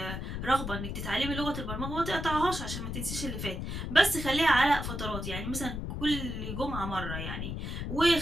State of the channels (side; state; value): left; noise; rumble, 5 dB below the sound